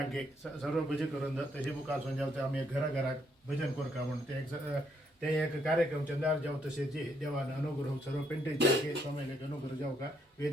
सर्व भजन करून तशी मुखार जावते आम्ही घराघरात भजन करू का म्हणून ते एक कार्यक्रम चंदार जाऊ तसे जे देवानं अनुग्रह सर्व पेंटेचे अंके स्वामीले अनुग्रह जाऊ का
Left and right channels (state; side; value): normal; both; correlation 0.73